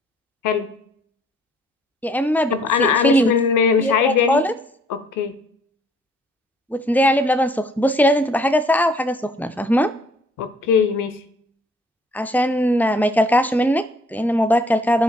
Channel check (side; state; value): both; normal; correlation 0.60